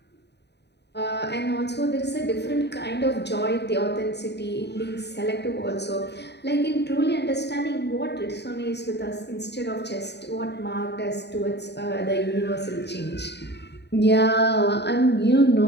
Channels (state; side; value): late; right; 0.49 ms